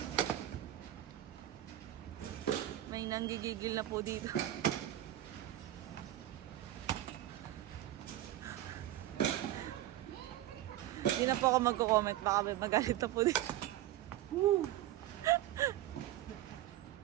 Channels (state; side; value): quieter; left; 13.7 dB